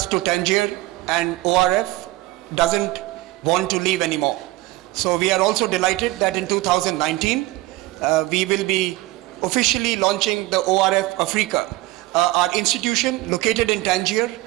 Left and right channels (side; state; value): left; quieter; 19.0 dB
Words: to Tangier, and ORF doesn't want to leave anymore. So we are also delighted that in 2019 we will be officially launching the ORF Africa, our institution located in Tangier,